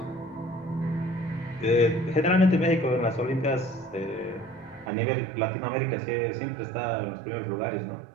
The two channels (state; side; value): drops out; left; at 4.9 s